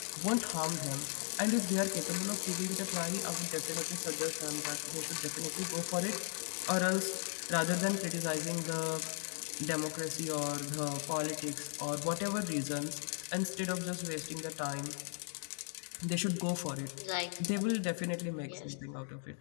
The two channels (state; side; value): silent; right; 53 dB below the other